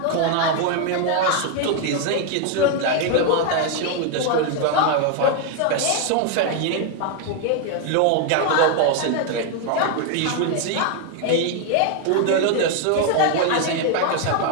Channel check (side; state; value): both; different; correlation 0.01